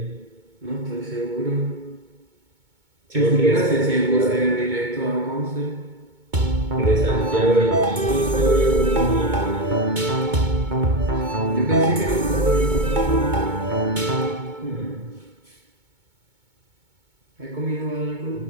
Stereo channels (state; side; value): late; left; 2.2 ms